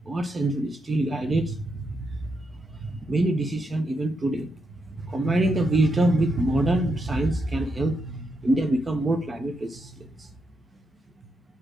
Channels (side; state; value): both; normal; correlation 0.82